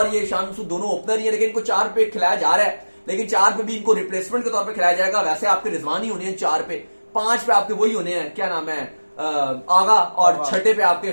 ये शान मसूद दोनों ओपनर ही है, लेकिन इनको 4 पे खिलाया जा रहा है, लेकिन 4 पे भी इनको रिप्लेसमेंट के तौर पे खिलाया जाएगा। वैसे आपके रिजवान ही होने हैं 4 पे, 5 पे आपके वही होने हैं, क्या नाम है, आगा, और 6 पे आपके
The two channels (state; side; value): inverted; both; correlation -1.00